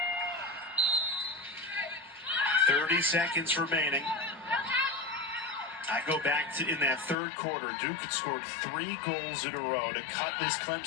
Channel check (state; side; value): drops out; right; at 7.2 s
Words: 30 seconds remaining. I go back to in that third quarter, Duke had scored 3 goals in a row to cut this